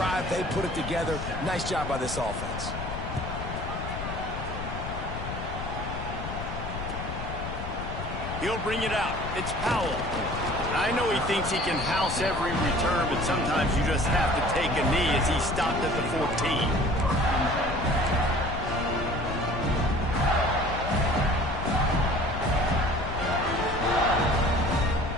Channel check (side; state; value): left; noise; rumble, 6 dB below the sound